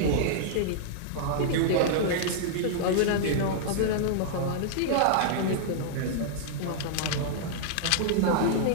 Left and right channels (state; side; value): different; both; correlation -0.01